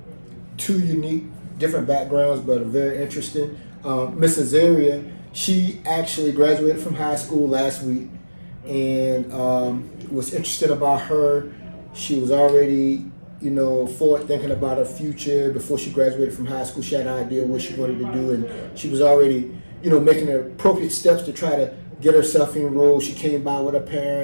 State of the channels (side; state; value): both; inverted; correlation -1.00